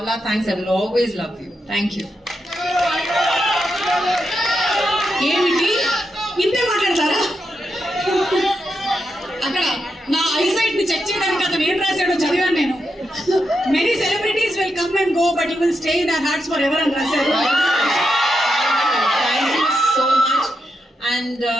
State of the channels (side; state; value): both; normal; correlation 0.85